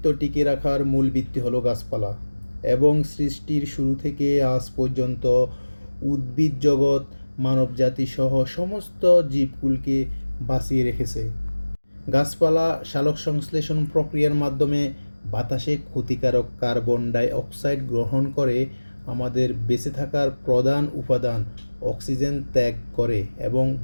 টিকিয়ে রাখার মূল ভিত্তি হলো গাছপালা, এবং সৃষ্টির শুরু থেকে আজ পর্যন্ত উদ্ভিদ জগৎ মানবজাতি সহ সমস্ত জীবকুলকে বাঁচিয়ে রেখেছে। গাছপালা সালোকসংশ্লেষণ প্রক্রিয়ার মাধ্যমে বাতাসে ক্ষতিকারক কার্বন ডাই অক্সাইড গ্রহণ করে আমাদের বেঁচে থাকার প্রধান উপাদান অক্সিজেন ত্যাগ করে এবং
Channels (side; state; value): both; inverted; correlation -1.00